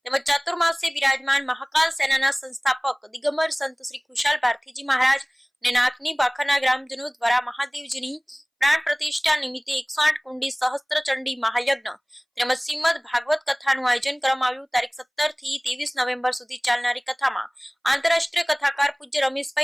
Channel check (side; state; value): both; identical; correlation 1.00